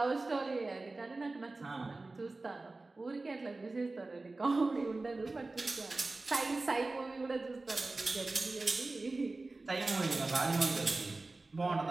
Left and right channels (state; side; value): quieter; left; 3.3 dB